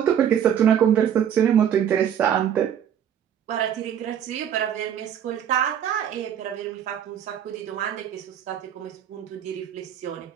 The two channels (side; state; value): left; quieter; 9.3 dB